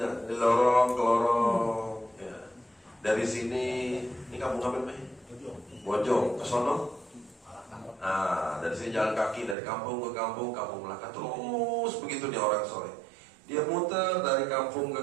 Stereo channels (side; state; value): left; drops out; at 9.6 s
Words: di lorong ke lorong. Ya. Dari sini, ini kampung apa nih? Bojong, ke sono. Nah, dari sini jalan kaki dari kampung ke kampung, kampung Melaka, terus begitu dia orang soleh. Dia muter dari kampung